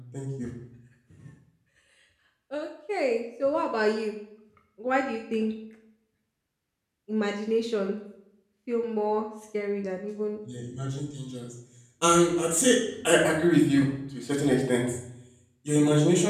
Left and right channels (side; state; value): both; identical; correlation 1.00